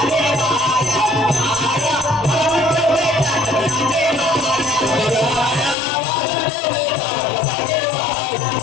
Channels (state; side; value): drops out; right; at 5.8 s